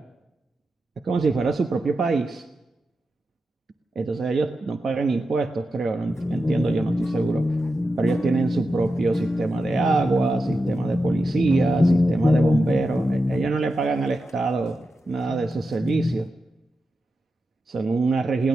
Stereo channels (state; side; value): normal; both; correlation 0.89